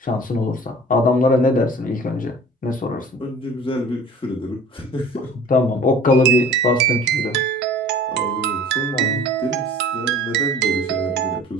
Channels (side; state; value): both; normal; correlation 0.45